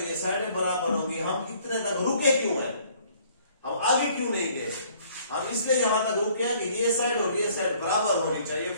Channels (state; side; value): inverted; both; correlation -0.59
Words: ये साइडें बराबर होंगी। हम इतने तक रुके क्यों हैं? हम आगे क्यों नहीं गए? हम इसलिए यहां तक रुके हैं कि ये साइड और ये साइड बराबर होनी चाहिए